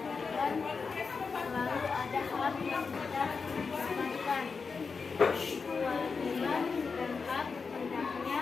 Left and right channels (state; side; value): quieter; right; 5.0 dB